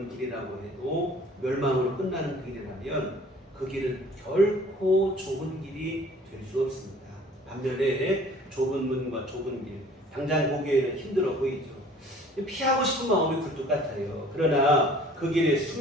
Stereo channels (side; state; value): both; normal; correlation 0.51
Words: 길이라고 해도 멸망으로 끝나는 길이라면 그 길은 결코 좁은 길이 될 수 없습니다. 반면에 좁은 문과 좁은 길, 당장 보기에는 힘들어 보이죠. 피하고 싶은 마음이 굴뚝 같아요. 그러나 그 길에